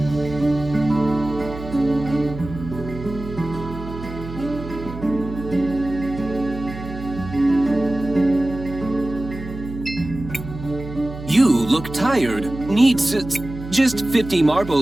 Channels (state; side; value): noise; right; hum, 11 dB below the sound